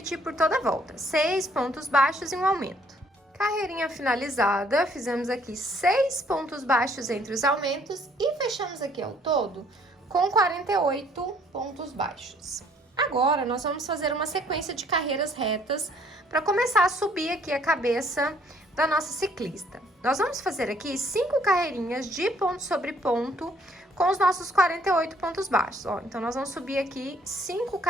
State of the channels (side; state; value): both; normal; correlation 0.63